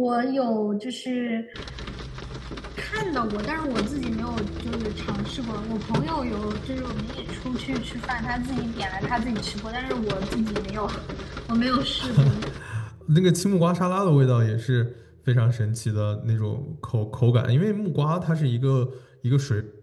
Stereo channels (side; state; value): both; identical; correlation 1.00